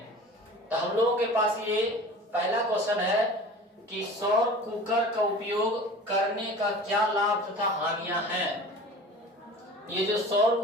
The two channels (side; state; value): both; normal; correlation 0.40